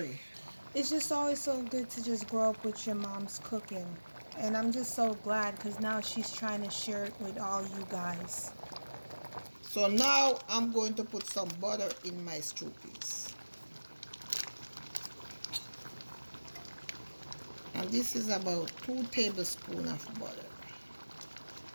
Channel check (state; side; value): inverted; both; correlation -1.00